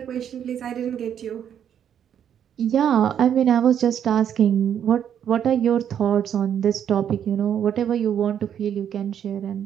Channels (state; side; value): quieter; left; 9.1 dB